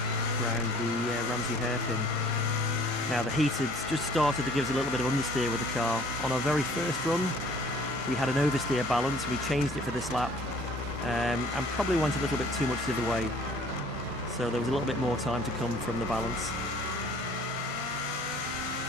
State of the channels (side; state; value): both; normal; correlation 0.54